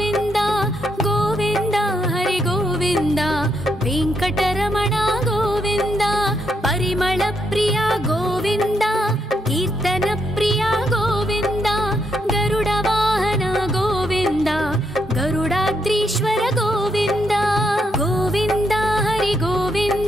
गोविन्द हरि गोविन्द वेङ्कटरमण गोविन्द। परिमल प्रिय गोविन्द कीर्तन प्रिय गोविन्द गरुड वाहन गोविन्द गरुडाद्रीश्वर गोविन्द गोविन्द हरि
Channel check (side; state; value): both; normal; correlation 0.78